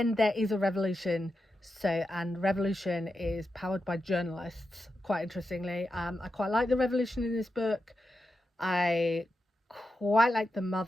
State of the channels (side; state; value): both; normal; correlation 0.88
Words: there is a revolution. And revolution is powered by journalists, quite interestingly. I quite like the revolution in this book. I quite like the